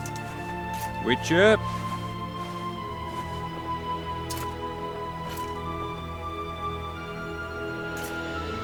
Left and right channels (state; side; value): identical; both; correlation 1.00